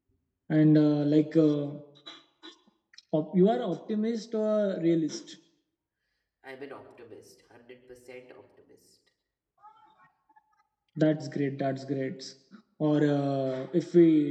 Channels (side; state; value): both; identical; correlation 1.00